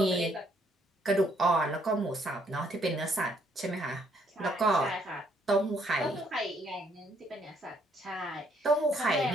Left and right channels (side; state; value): both; normal; correlation 0.68